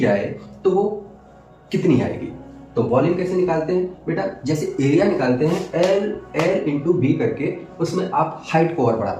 तो वो कितनी आएगी। तो वॉल्यूम कैसे निकालते हैं बेटा, जैसे एरिया निकालते हैं L इंटू बी करके, उसमें आप हाइट को और बढ़ा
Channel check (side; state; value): both; identical; correlation 1.00